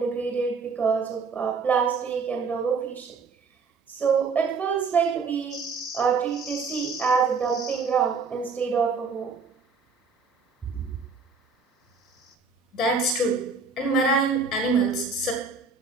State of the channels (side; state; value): left; quieter; 4.7 dB